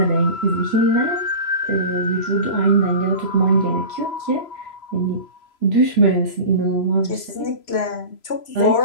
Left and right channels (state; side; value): late; right; 3.0 ms